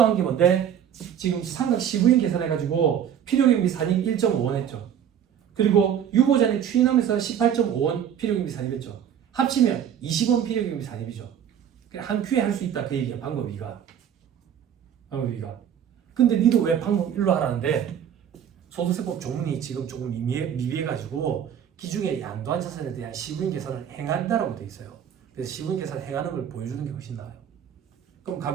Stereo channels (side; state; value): left; quieter; 9.2 dB